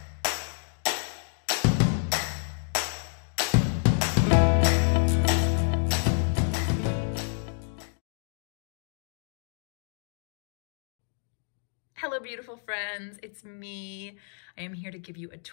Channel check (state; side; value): silent; right; digital silence